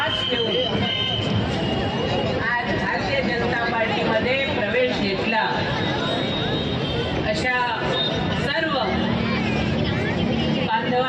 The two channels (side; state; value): both; identical; correlation 1.00